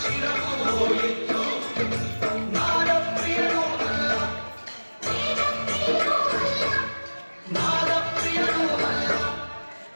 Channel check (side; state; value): both; inverted; correlation -1.00